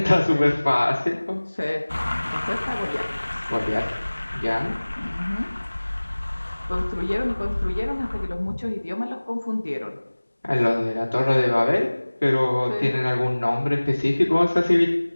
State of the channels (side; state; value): both; inverted; correlation -1.00